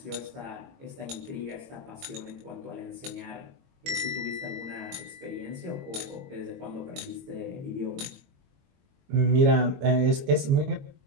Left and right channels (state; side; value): late; left; 22 ms